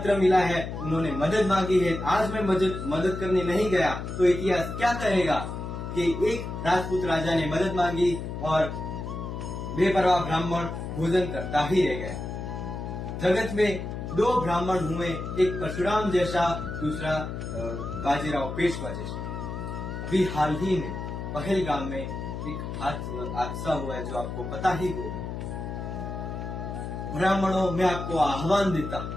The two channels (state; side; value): noise; left; hum, 6 dB below the sound